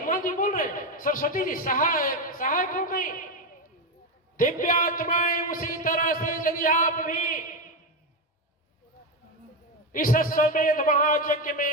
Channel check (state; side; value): normal; both; correlation 0.12